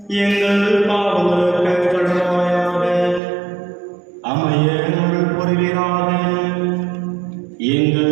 எங்கள் பாவங்களுக்கு கழுவாயாக அமைய அருள் புரிவீராக.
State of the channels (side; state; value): left; drops out; at 3.2 s